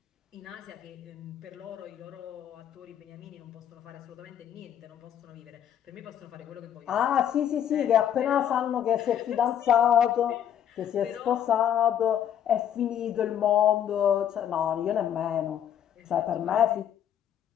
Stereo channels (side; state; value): right; quieter; 9.8 dB